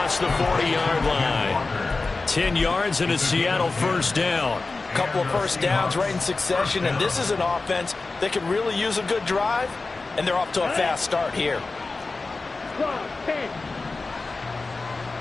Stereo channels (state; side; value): quieter; right; 3.7 dB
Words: the 40-yard line. 10 yards and a Seattle first down. Couple of first downs right in succession, and this is an offense that could really use a good drive, and they're off to a fast start here.